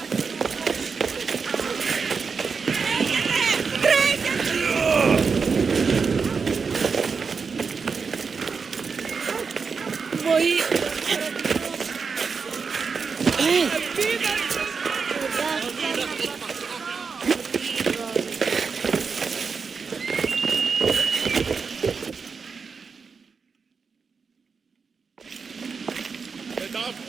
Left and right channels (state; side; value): quieter; left; 5.3 dB